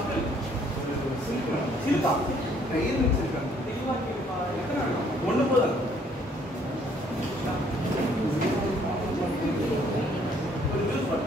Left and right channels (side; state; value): both; normal; correlation 0.63